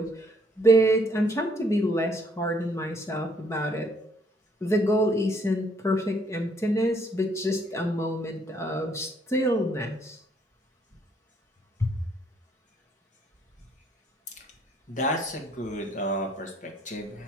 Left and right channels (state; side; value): normal; both; correlation 0.66